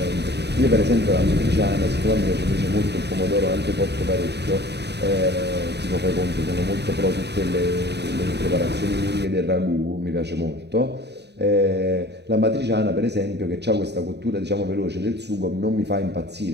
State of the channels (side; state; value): left; late; 0.49 ms